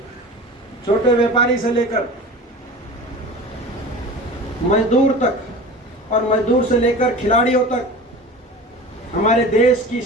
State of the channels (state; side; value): normal; both; correlation 0.35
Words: छोटे व्यापारी से लेकर मजदूर तक, और मजदूर से लेकर खिलाड़ियों तक, हमारे देश की